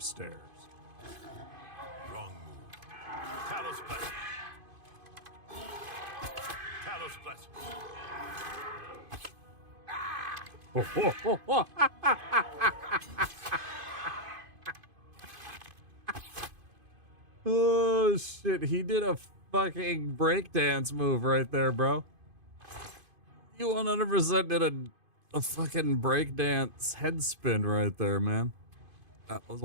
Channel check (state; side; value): late; left; 2.5 ms